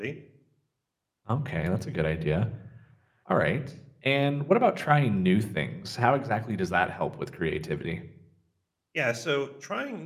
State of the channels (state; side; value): identical; both; correlation 1.00